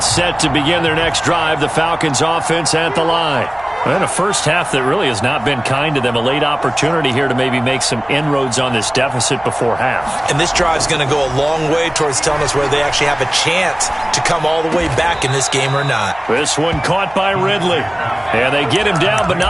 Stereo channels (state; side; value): noise; right; hum, 25 dB below the sound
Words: set to begin their next drive, the Falcons offense at the line. And a first half that really has not been kind to them. A late opportunity here to maybe make some inroads on this deficit before half. And this drive's going to go a long way towards telling us whether they actually have a chance to come all the way back in this game or not. This one caught by Ridley. And they get him down, but